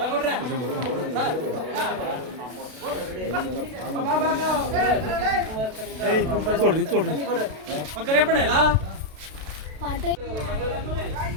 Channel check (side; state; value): left; late; 32 ms